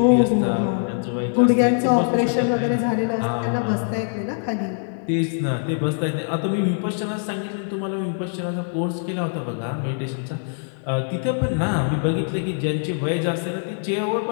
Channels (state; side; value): silent; right; digital silence